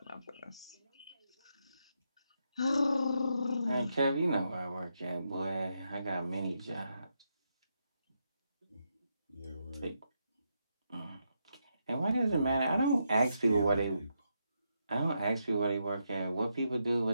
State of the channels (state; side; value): inverted; both; correlation -0.82